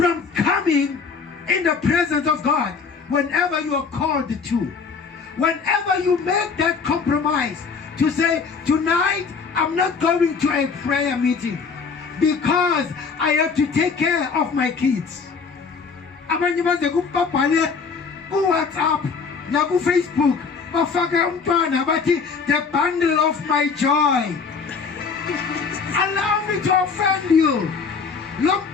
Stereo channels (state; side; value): quieter; right; 5.3 dB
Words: coming in the presence of God whenever you are called to. Whenever you make that compromise to say, tonight I'm not going to a prayer meeting because I have to take care of my kids. Abanye baze kubabhale ku WhatsApp na ku Facebook bafaka umntwana bathi the bundle of my joy. Allow me to offend you. Lo